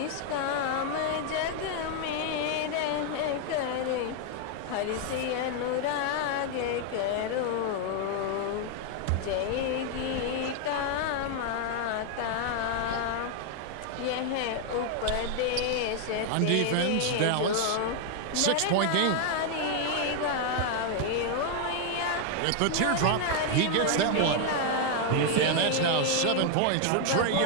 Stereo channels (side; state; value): both; different; correlation 0.00